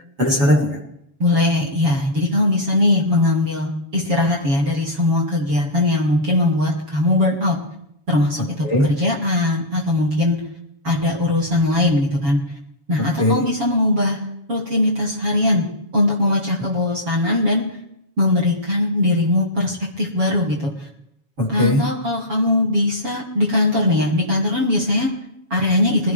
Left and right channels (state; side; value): late; left; 7.2 ms